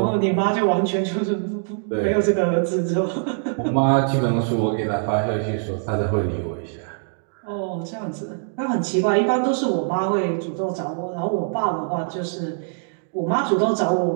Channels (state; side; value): silent; left; digital silence